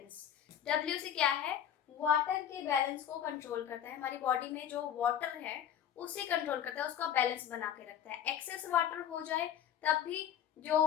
W से क्या है? वाटर के बैलेंस को कंट्रोल करता है। हमारी बॉडी में जो वाटर है उसे कंट्रोल करता है, उसका बैलेंस बना के रखता है। एक्सेस वाटर हो जाए तब भी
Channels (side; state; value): right; quieter; 9.8 dB